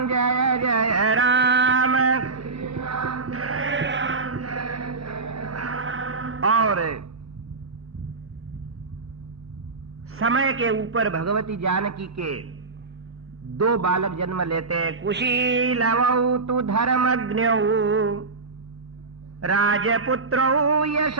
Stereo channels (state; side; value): quieter; left; 4.0 dB